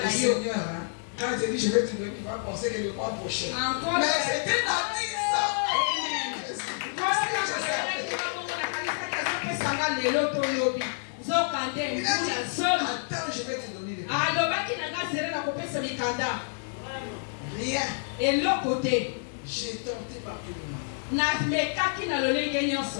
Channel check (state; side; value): silent; right; digital silence